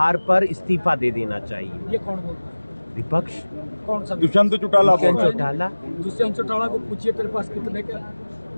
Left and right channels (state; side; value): inverted; both; correlation -1.00